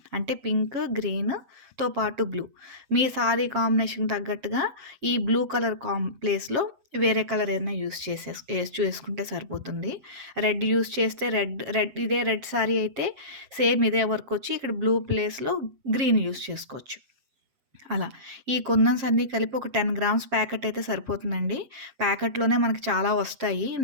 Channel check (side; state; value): left; late; 7.4 ms